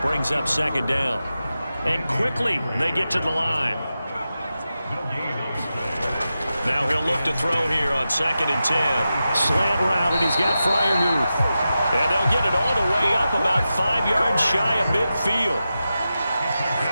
brings up 2nd down. And quickly, they get to the line. Now he'll look to throw here on 2nd and 10. Slant route, and he's got Freiermuth. And they'll get it all the way up about 5 yards shy of midfield.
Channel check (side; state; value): both; inverted; correlation -0.91